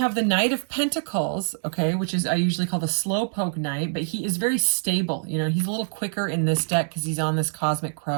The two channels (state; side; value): silent; left; 62 dB below the other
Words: the Knight of Pentacles, okay, which is I usually call the slowpoke knight, but he is very stable. You know, he's a little quicker in this deck because he's on this cosmic